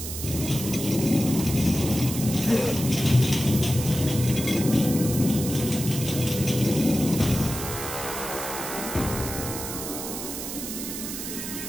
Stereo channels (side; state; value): right; noise; hiss, 7 dB below the sound